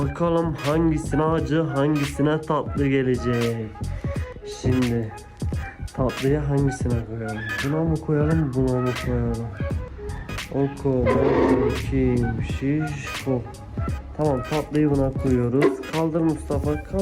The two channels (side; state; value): both; identical; correlation 1.00